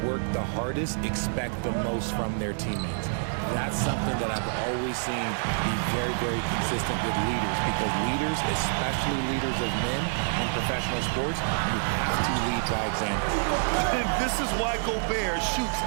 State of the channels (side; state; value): left; silent; digital silence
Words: work the hardest expect the most from their teammates. That's something that I've always seen be very, very consistent with leaders, because leaders, especially leaders of men in professional sports, you have to lead by example. And this is why Gobert shoots